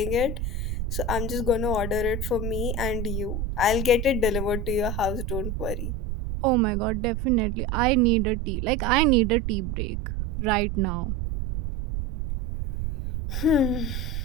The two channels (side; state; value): right; noise; rumble, 3 dB below the sound